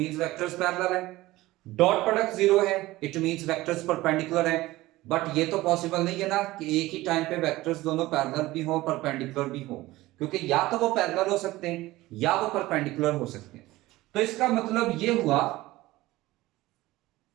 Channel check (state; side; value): quieter; left; 18.1 dB